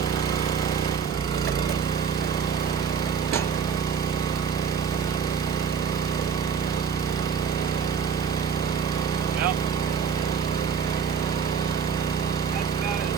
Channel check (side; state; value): left; quieter; 6.6 dB